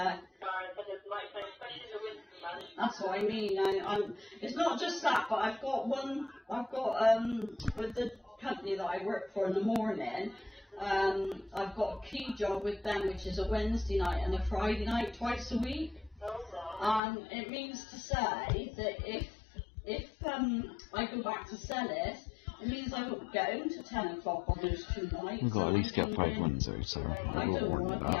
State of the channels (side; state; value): right; drops out; at 17.0 s